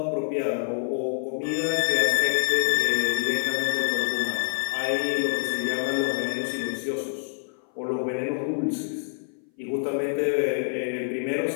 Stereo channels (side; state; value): right; silent; 58 dB below the other